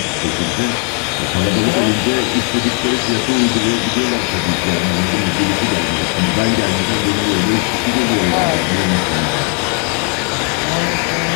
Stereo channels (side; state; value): right; quieter; 36.7 dB